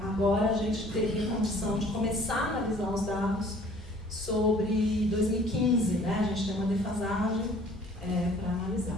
agora a gente teria condição de começar a analisar os dados sobre 2015, né? A gente tem uma defasagem para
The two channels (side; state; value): both; normal; correlation 0.53